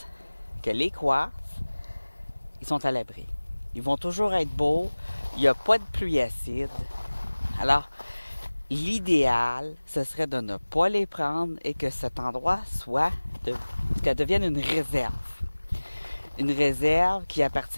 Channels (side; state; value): both; inverted; correlation -1.00